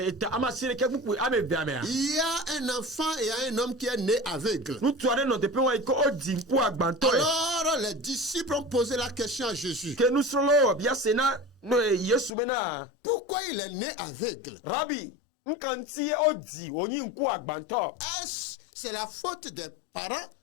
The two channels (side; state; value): right; drops out; at 12.3 s